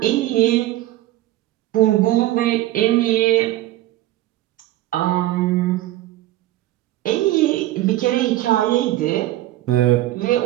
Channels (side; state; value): left; quieter; 15.4 dB